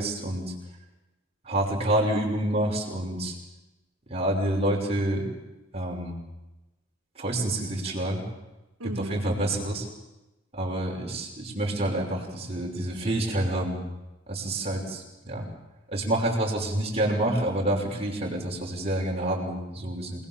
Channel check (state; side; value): normal; both; correlation 0.46